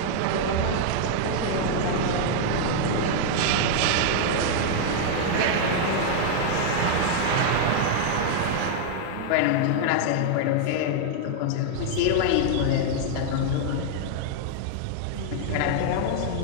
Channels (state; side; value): different; both; correlation 0.00